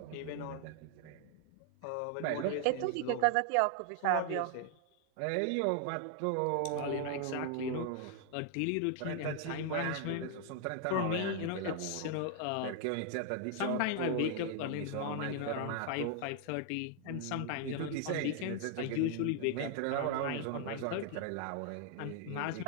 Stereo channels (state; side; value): different; both; correlation 0.00